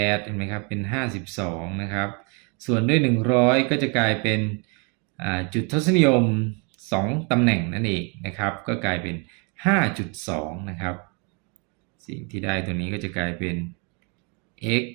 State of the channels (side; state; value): left; quieter; 33.7 dB